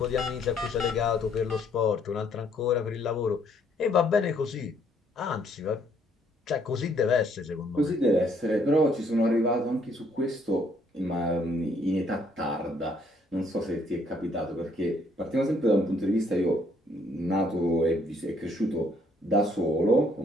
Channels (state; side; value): normal; both; correlation 0.66